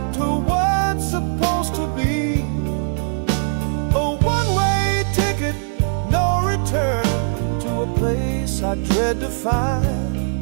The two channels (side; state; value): left; silent; digital silence